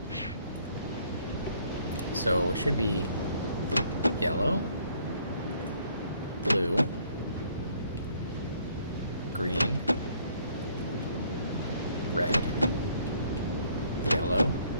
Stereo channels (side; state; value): both; inverted; correlation -0.64